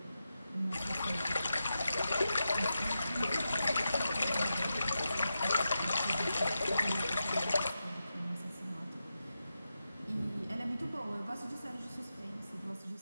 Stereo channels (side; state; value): both; inverted; correlation -0.89